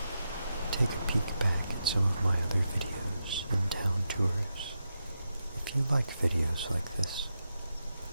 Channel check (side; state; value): both; inverted; correlation -0.87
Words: take a peek back at some of my other videos and town tours. If you like videos like this,